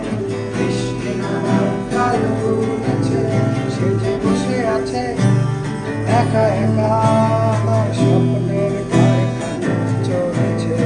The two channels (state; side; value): identical; both; correlation 1.00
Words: বৃষ্টি নামার কাল ঘুমেছে সে যে বসে আছে একা একা আমার স্বপ্নের কারখানা চলেছে